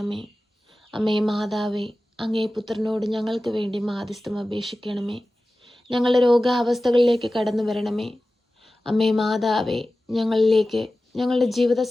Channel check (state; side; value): normal; both; correlation 0.96